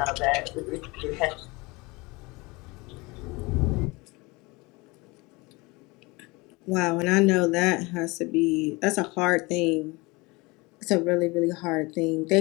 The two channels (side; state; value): right; quieter; 24.6 dB